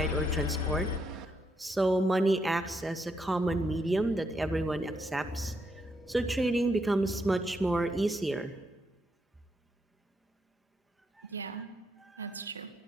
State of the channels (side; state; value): both; normal; correlation 0.78